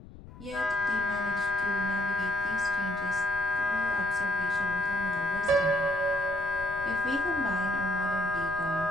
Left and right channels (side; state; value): left; noise; rumble, 17 dB below the sound